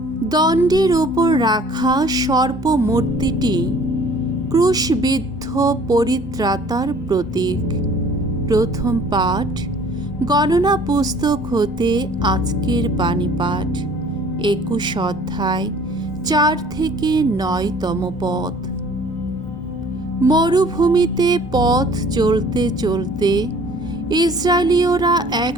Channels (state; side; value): normal; both; correlation 0.53